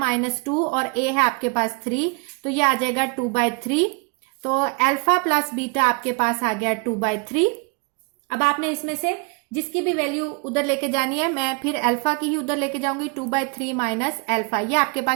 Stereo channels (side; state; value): left; quieter; 31.2 dB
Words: और a है आपके पास 3, तो ये आ जाएगा 2/3। तो अल्फा प्लस बीटा आपके पास आ गया 2/3। अब आपने इसमें से जिसकी भी वैल्यू उधर लेके जानी है, मैं फिर अल्फा की ही उधर लेके जाऊंगी, 2/3 माइनस अल्फा, ये आपके